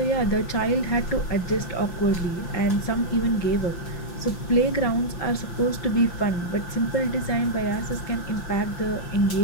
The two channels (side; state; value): right; late; 5.9 ms